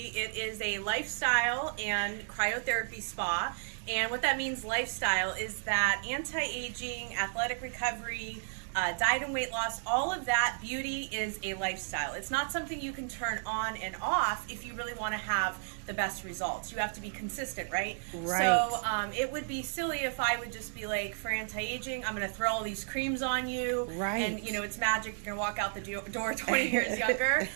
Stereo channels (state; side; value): silent; left; digital silence